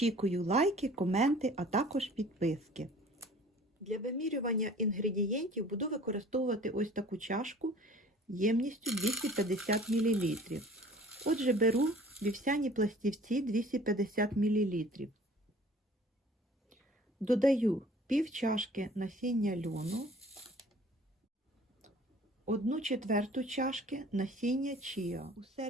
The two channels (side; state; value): both; normal; correlation 0.50